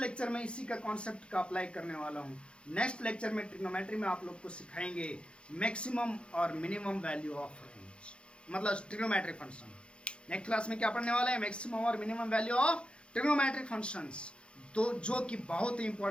में इसी का कॉन्सेप्ट का अप्लाई करने वाला हूँ। नेक्स्ट लेक्चर में ट्रिग्नोमेट्री में आप लोग को सिखाएंगे मैक्सिमम और मिनिमम वैल्यू ऑफ रेंज, मतलब ट्रिग्नोमेट्रिक फंक्शन। नेक्स्ट क्लास में क्या पढ़ने वाले हैं? मैक्सिमम और minimum value of trigonometric functions, तो जो कि बहुत ही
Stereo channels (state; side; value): late; right; 0.057 ms